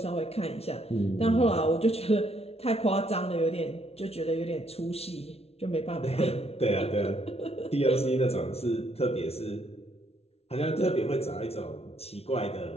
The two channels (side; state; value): right; late; 0.30 ms